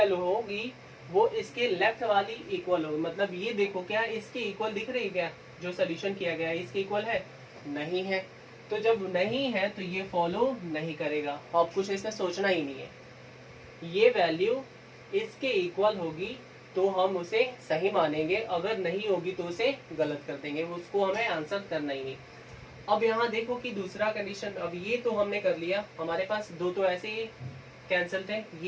होगी वो इसके लेफ्ट वाली इक्वल होगी। मतलब ये देखो क्या इसके इक्वल दिख रही है क्या, जो सोल्यूशन किया गया है इसके इक्वल है, नहीं है। तो जब नहीं है तो ये फॉलो नहीं करेगा। अब कुछ इसमें सोचना ही नहीं है, ये वैल्यू इसके इक्वल होगी तो हम उसे सही मानेंगे, अगर नहीं होगी तो उसे गलत कर देंगे, उसको हमें आंसर करना ही नहीं। अब यहाँ देखो कि दूसरा कंडीशन, अब ये तो हमने कर लिया, हमारे पास दो तो ऐसे ही कैंसिल थे।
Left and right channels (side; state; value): both; identical; correlation 1.00